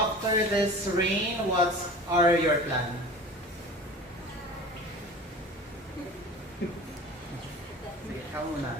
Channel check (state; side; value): normal; both; correlation 0.38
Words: this reign, what are your plans? Sige, ikaw